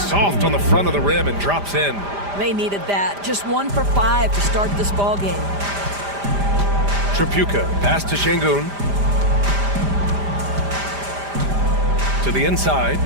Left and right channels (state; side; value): late; left; 5.0 ms